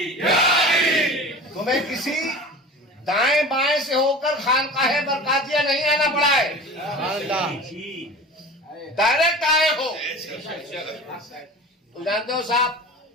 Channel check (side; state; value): both; normal; correlation 0.37